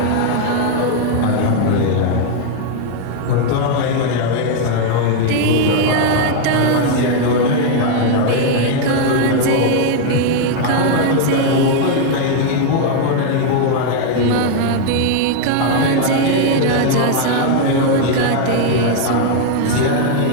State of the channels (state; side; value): different; both; correlation 0.00